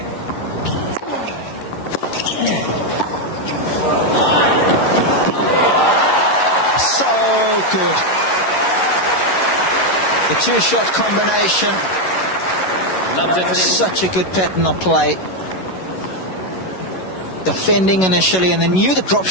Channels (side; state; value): right; late; 11 ms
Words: Good. The two-shot combination. Such a good pattern of play. Defending initially, and then knew the drop